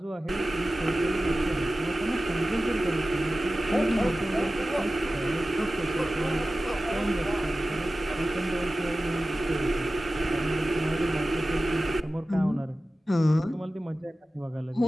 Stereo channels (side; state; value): both; normal; correlation 0.95